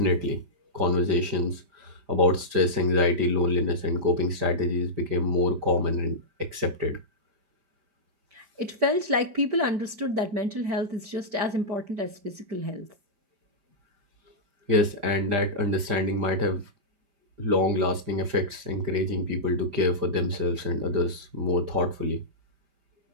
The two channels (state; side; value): late; left; 5.0 ms